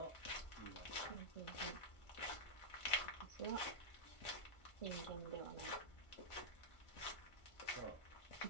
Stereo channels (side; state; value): right; late; 1.4 ms